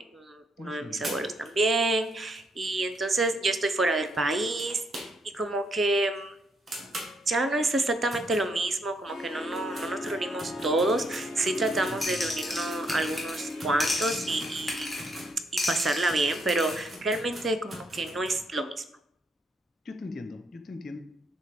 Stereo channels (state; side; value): normal; both; correlation 0.75